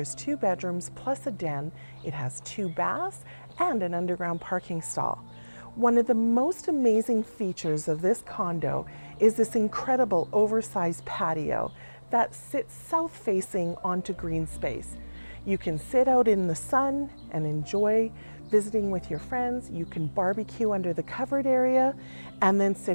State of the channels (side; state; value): both; inverted; correlation -1.00